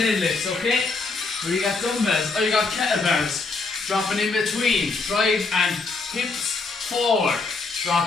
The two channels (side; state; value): right; quieter; 4.0 dB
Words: okay? Where you got dumbbells, or you got kettlebells. Dropping in between, drive and hips forward.